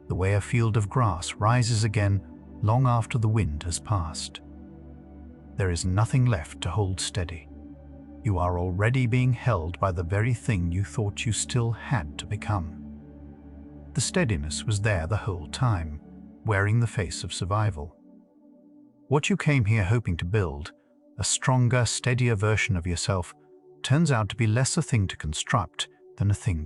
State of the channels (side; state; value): both; identical; correlation 1.00